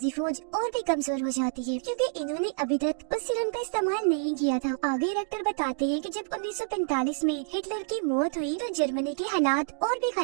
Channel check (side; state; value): left; silent; digital silence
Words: फौज और भी कमजोर हो जाती है क्योंकि इन्होंने अभी तक उस सीरम का इस्तेमाल नहीं किया था। आगे रेक्टर बताते हैं कि जब 1945 में हिटलर की मौत हुई तो जर्मनी के हालात और भी